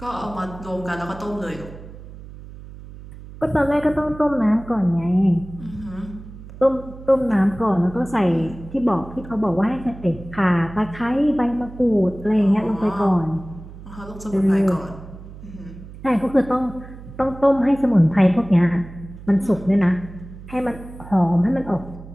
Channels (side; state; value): right; noise; hum, 15 dB below the sound